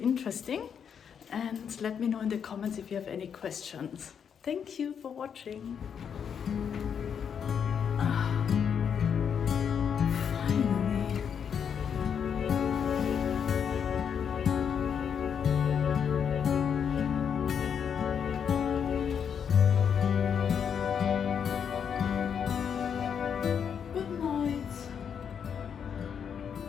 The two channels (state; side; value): quieter; right; 7.5 dB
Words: and let me know in the comments if you have any questions. Thank you for watching.